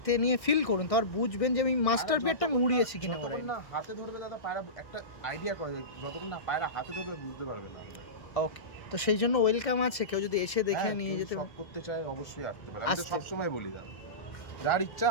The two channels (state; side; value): late; right; 1.6 ms